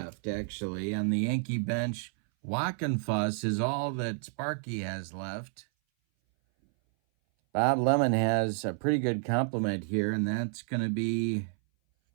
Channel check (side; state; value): left; silent; 58 dB below the other